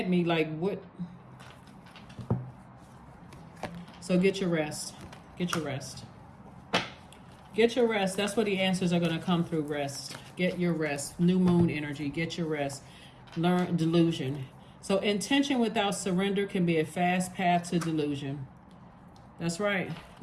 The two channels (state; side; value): identical; both; correlation 1.00